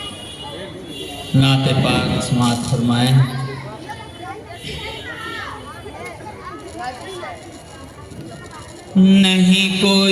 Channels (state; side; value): identical; both; correlation 1.00